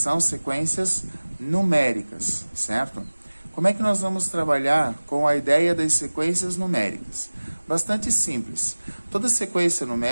sequências numéricas, certo? Como é que nós vamos trabalhar com a ideia das sequências numéricas? Bastante simples. Toda sequência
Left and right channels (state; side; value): inverted; both; correlation -1.00